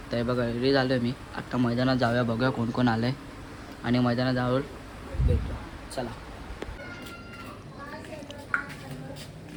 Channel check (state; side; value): identical; both; correlation 1.00